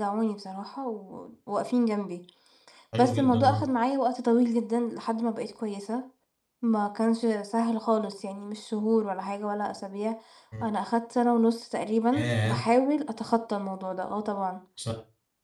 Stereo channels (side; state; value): both; identical; correlation 1.00